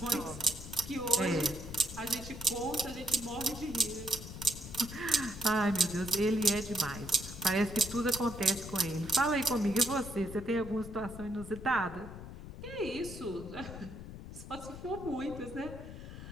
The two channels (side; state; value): left; noise; rumble, 11 dB below the sound